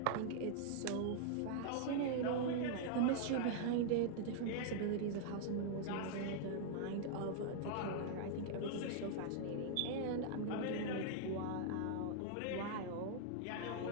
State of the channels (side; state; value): both; different; correlation -0.01